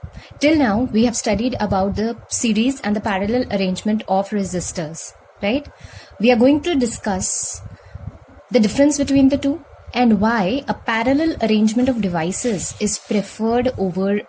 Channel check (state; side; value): identical; both; correlation 1.00